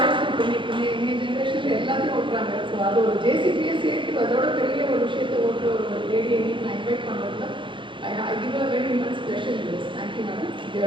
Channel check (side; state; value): left; late; 0.24 ms